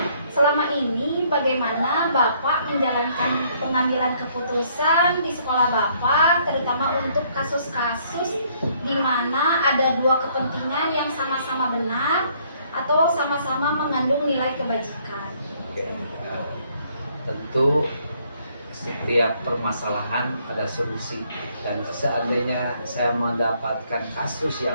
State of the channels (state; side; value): inverted; both; correlation -0.66